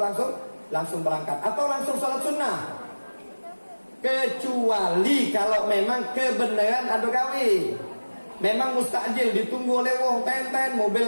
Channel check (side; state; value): both; inverted; correlation -1.00